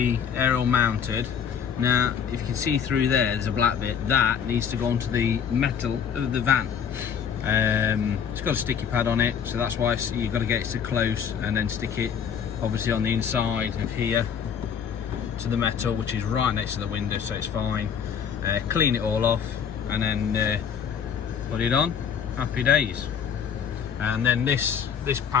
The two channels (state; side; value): quieter; right; 7.6 dB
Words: aerial mounted. Now, if you can see through there's a black bit. That needs to go onto the metal of the van. It's got a sticky pad on it, so that's why you've got to get it to close and then stick it obviously on the inside of here to the metal, which is right next to the window, so it's fine. Clean it all off and then put it on. Happy days. And then this